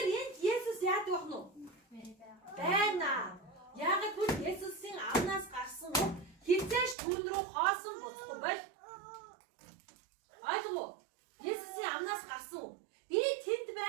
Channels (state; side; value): drops out; left; at 7.0 s